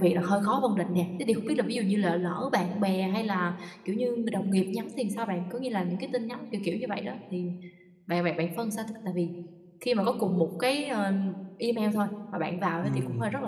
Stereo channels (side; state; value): both; identical; correlation 1.00